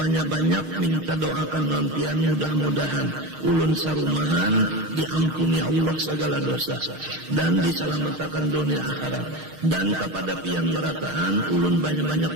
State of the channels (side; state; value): left; late; 6.5 ms